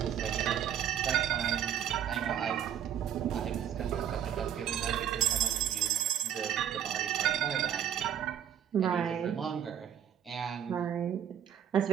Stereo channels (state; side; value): quieter; left; 9.6 dB